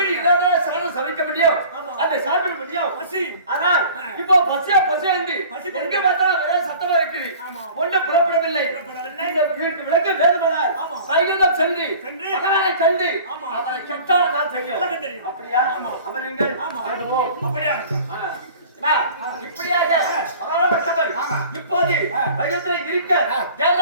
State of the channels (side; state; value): both; inverted; correlation -0.44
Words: இல்லாத சாதம் சமைக்க முடியும், அதை சாப்பிட முடியும். பசி ஆனால் இப்போ பசியா பசியாண்டி எங்க பார்த்தாலும் ஒரே சத்தமா இருக்குது. ஒன்றும் புறப்படவில்லை. இந்த விளக்க வேண்டுமானால் வைகுண்டம் சென்று பகவானை கண்டு அவரை கெட்டால் தான் தெரியும். அப்படியா? அமருங்கள். அப்படியா இப்படியாக பகவானவர் இப்போது வைகுந்தத்தில் இருக்க